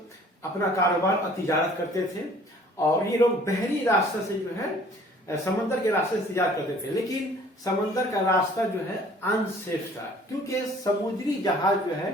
अपना कारोबार और तिजारत करते थे और ये लोग बहरी रास्ते से जो है समंदर के रास्ते से तिजारत करते थे, लेकिन समंदर का रास्ता जो है अनसेफ था क्योंकि समुद्री जहाज जो है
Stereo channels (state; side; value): normal; both; correlation 0.54